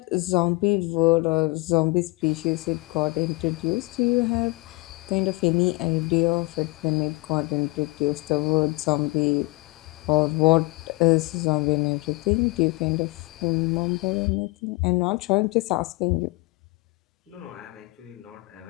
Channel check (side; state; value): right; quieter; 24.9 dB